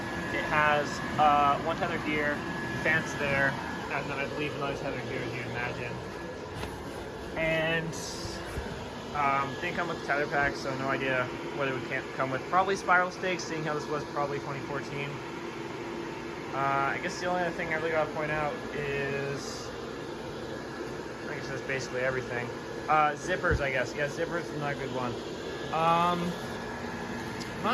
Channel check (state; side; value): identical; both; correlation 1.00